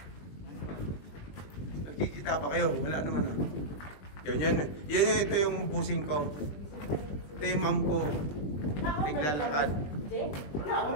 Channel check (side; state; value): right; late; 21 ms